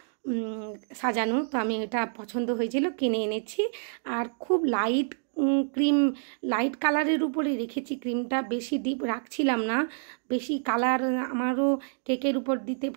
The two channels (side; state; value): left; silent; digital silence